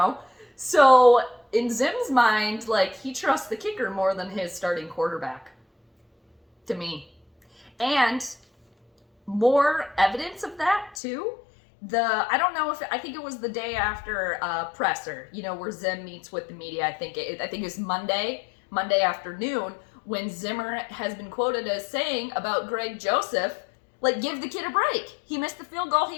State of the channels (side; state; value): right; drops out; at 11.0 s